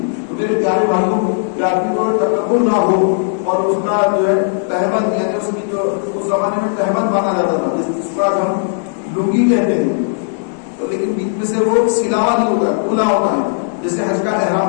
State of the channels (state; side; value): silent; right; digital silence